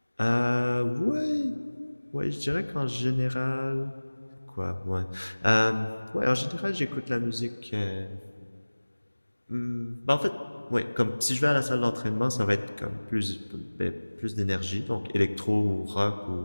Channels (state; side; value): inverted; both; correlation -1.00